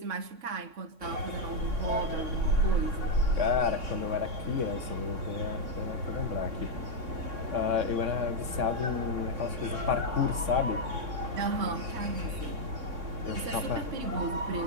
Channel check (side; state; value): left; late; 3.6 ms